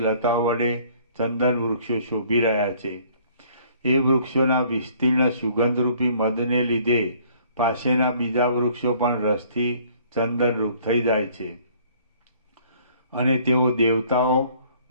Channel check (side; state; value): both; inverted; correlation -0.58